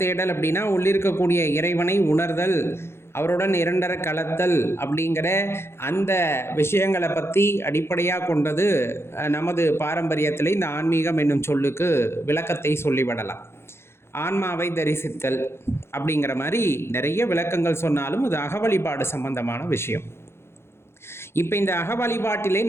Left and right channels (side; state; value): right; late; 0.12 ms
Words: அப்படின்னா உள்ளிருக்கக்கூடிய இறைவனை உணர்தல், அவருடன் இரண்டர கலத்தல் அப்படிங்கிற அந்த விஷயங்களை பற்றி அடிப்படையாக கொண்டது நமது பாரம்பரியத்தில் இந்த ஆன்மீகம் என்னும் சொல்லுக்கு விளக்கத்தை சொல்லிவிடலாம். ஆன்மாவை தரிசித்தல் அப்படிங்கிற மாதிரி நிறைய விளக்கங்கள் சொன்னாலும் அது அகவழிபாடு சம்பந்தமான விஷயம். இப்போ இந்த அக வழிபாட்டிலே